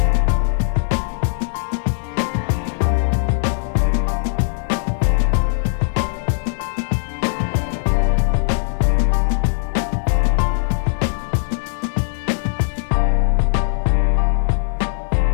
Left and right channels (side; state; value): right; silent; digital silence